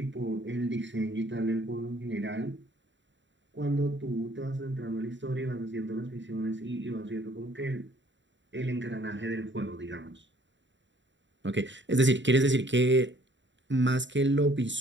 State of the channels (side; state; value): left; late; 0.54 ms